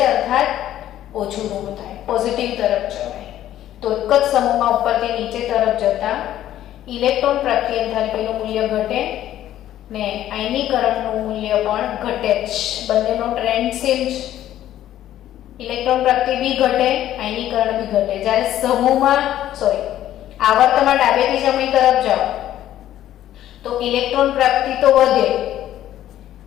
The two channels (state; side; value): quieter; right; 12.5 dB